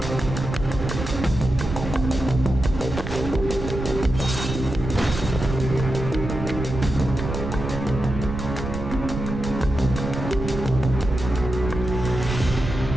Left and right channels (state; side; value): noise; right; rumble, 6 dB below the sound